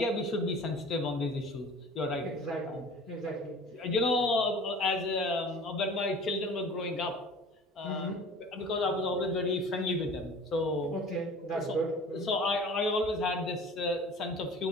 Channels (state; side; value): normal; both; correlation 0.43